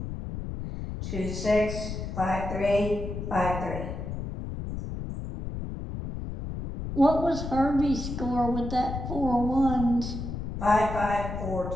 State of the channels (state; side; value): noise; left; rumble, 6 dB below the sound